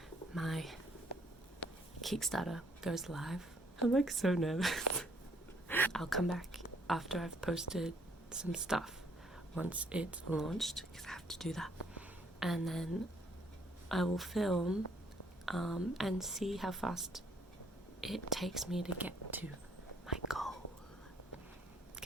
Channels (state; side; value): normal; both; correlation 0.66